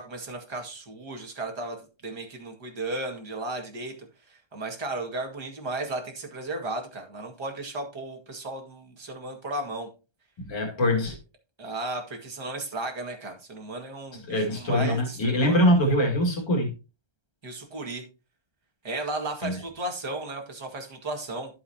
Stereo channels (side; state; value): right; late; 1.3 ms